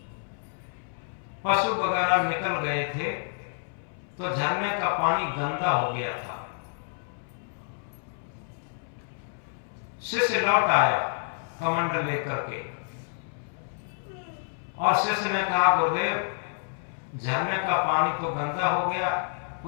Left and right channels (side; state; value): right; silent; 59 dB below the other